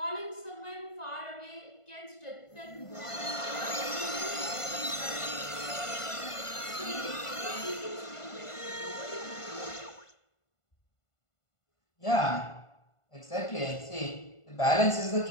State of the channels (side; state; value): right; late; 1.5 ms